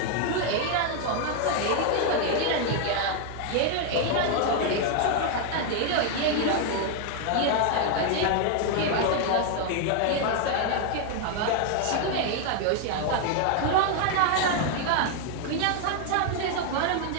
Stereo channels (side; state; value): both; different; correlation 0.00